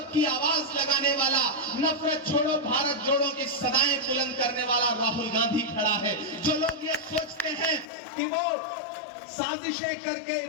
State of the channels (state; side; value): drops out; right; at 7.9 s